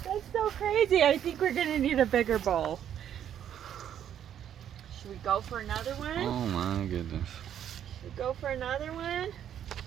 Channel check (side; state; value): left; quieter; 9.9 dB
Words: That's so crazy. I think we're gonna need a bigger bowl. Should we go for another one? Oh my goodness. Should we go for another one?